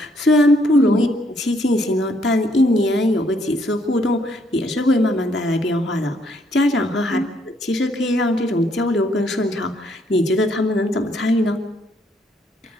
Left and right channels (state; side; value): normal; both; correlation 0.69